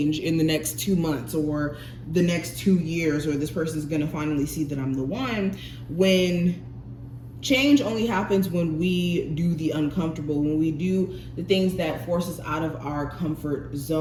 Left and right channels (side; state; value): both; identical; correlation 1.00